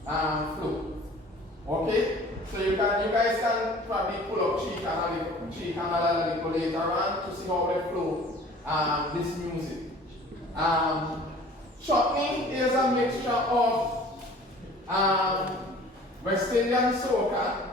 flow. Okay? So you guys can probably pull up Tree Canal a little later on to see how they flow this music. Chutney is a mixture of West Indian soca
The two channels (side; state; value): both; normal; correlation 0.48